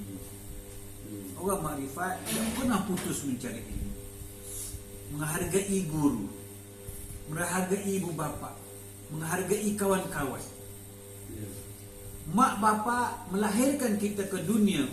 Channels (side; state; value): both; identical; correlation 1.00